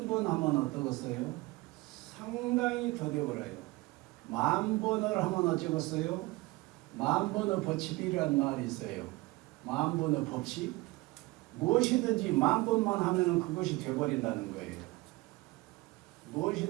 하면 어떠겠어요? 상당히 더 되어버려요. 10,000번을 하면 어쩌겠어요? 10,000번의 법칙이라는 말이 있어요. 10,000번의 법칙? 무엇이든지 10,000번만 하면 그것이 되어버린다는 거예요.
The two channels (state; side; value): quieter; left; 21.7 dB